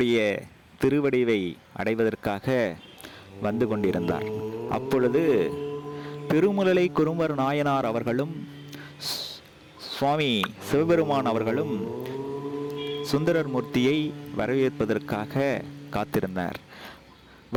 திருவடிவை அடைவதற்காக வந்து கொண்டிருந்தார். அப்பொழுது பெருமிழலை குறும்பர் நாயனார் அவர்களும் சுவாமி சிவபெருமான் அவர்களும் சுந்தரமூர்த்தியை வரவேற்பதற்காக காத்திருந்தார்.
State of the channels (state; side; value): identical; both; correlation 1.00